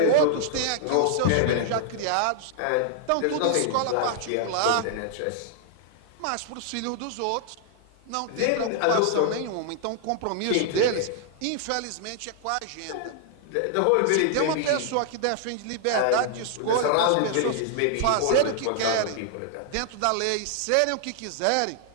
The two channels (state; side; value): different; both; correlation 0.00